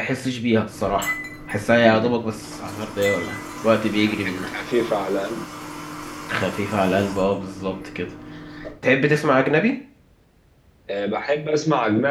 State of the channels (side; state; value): both; identical; correlation 1.00